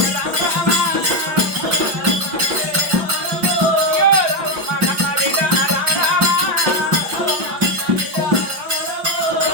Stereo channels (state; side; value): late; left; 5.5 ms